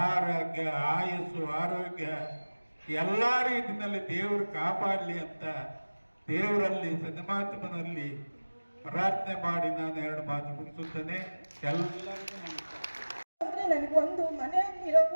ಆರೋಗ್ಯ, ಆಯಸ್ಸು, ಆರೋಗ್ಯ ಎಲ್ಲ ರೀತಿಯಲ್ಲಿ ದೇವರು ಕಾಪಾಡಲಿ ಅಂತ ದೇವರಲ್ಲಿ ಸನ್ಮಾತ್ಮನಲ್ಲಿ ಪ್ರಾರ್ಥನೆ ಮಾಡಿ ನಾನು 2 ಮಾತು ಮುಗಿಸುತ್ತೇನೆ. ಎಲ್ಲರಿಗೂ ನಮಸ್ಕಾರ. ಅಂದ್ರೆ ನನಗೊಂದು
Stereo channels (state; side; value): inverted; both; correlation -1.00